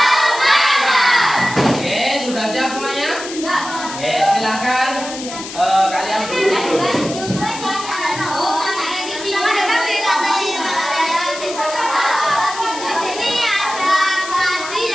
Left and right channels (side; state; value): left; noise; hiss, 11 dB below the sound